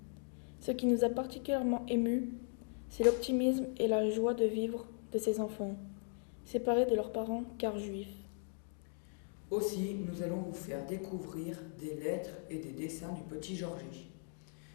Ce qui nous a particulièrement émus, c'est l'optimisme et la joie de vivre de ces enfants, séparés de leurs parents car juifs. Aussi, nous allons vous faire découvrir des lettres et des dessins du petit Georgie,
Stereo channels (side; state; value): right; silent; 52 dB below the other